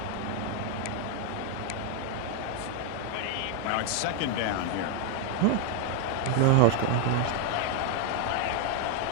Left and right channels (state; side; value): different; both; correlation 0.01